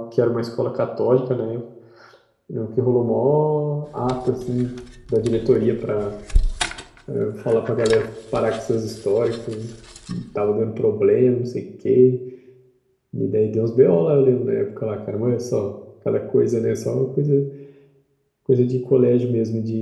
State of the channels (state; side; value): identical; both; correlation 1.00